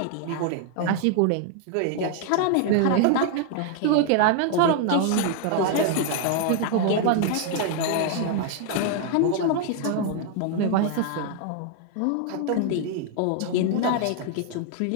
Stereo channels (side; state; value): both; different; correlation 0.00